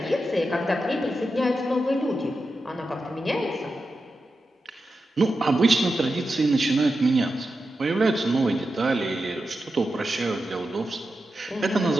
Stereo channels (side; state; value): both; normal; correlation 0.90